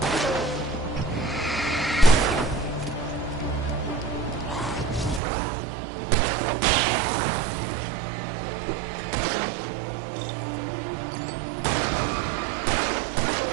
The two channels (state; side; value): drops out; left; at 5.2 s